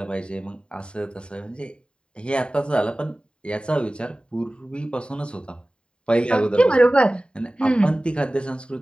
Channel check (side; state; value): right; late; 0.052 ms